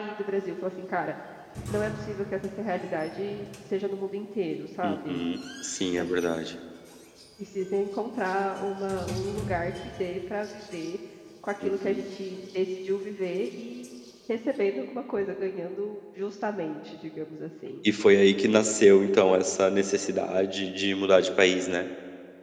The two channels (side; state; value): both; identical; correlation 1.00